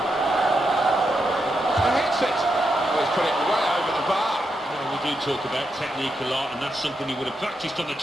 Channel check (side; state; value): both; normal; correlation 0.84